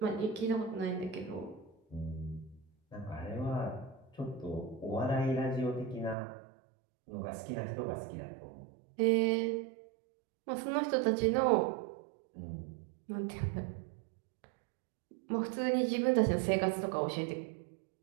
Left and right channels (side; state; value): left; drops out; at 6.2 s